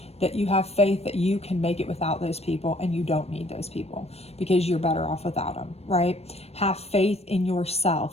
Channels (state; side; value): late; right; 0.30 ms